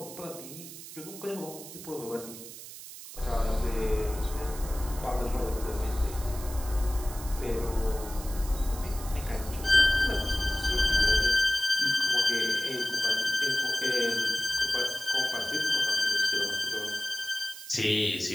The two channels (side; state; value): right; noise; hiss, 13 dB below the sound